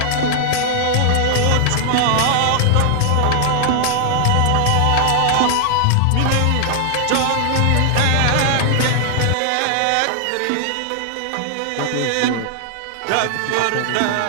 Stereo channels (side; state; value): both; different; correlation 0.00